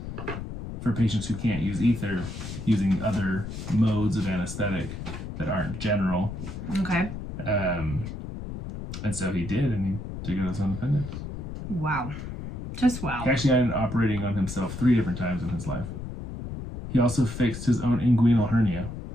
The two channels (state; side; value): noise; left; rumble, 8 dB below the sound